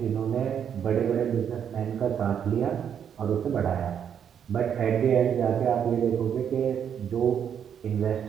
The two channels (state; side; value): quieter; left; 8.4 dB